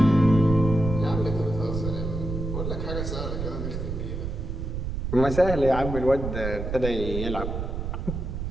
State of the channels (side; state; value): right; noise; rumble, 4 dB below the sound